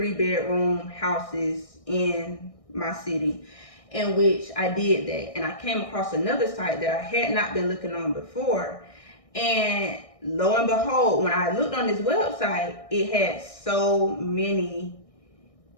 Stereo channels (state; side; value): late; right; 1.6 ms